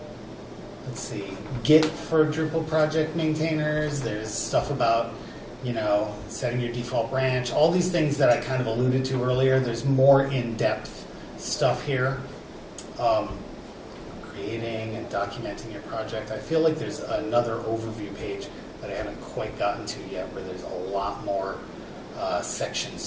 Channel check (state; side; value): identical; both; correlation 1.00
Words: let's see, Git for Drupal project maintainers. There's stuff about, setting your default branch, all these things that I kind of alluded to earlier. There's more in-depth stuff here. Creating and documenting your project. I feel like there's another overview page that I haven't quite gotten to yet where there's a lot more